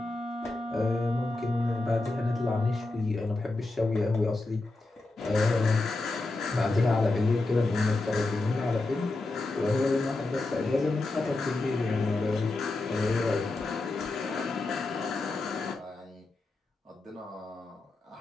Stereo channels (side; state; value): right; quieter; 3.1 dB